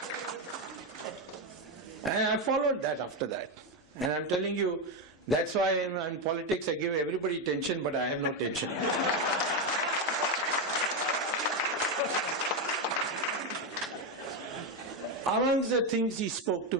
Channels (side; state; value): both; normal; correlation 0.08